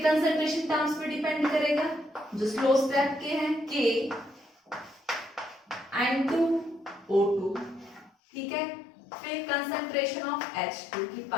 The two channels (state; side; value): drops out; right; at 8.1 s